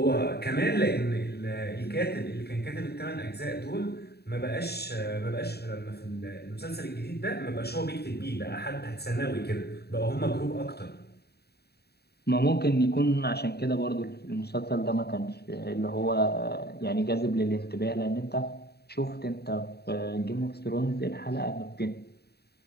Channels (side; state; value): right; late; 0.47 ms